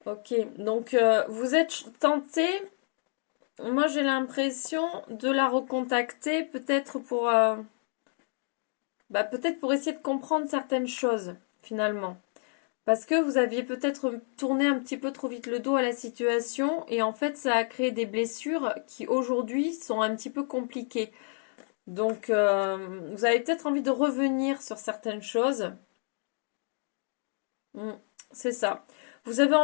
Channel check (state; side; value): silent; right; 57 dB below the other